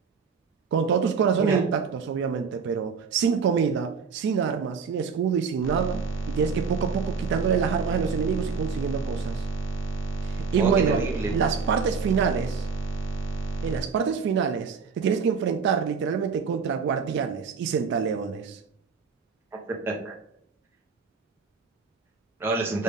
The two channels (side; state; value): left; quieter; 5.4 dB